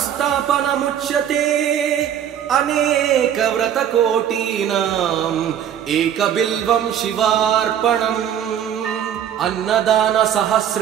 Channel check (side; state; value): left; quieter; 9.6 dB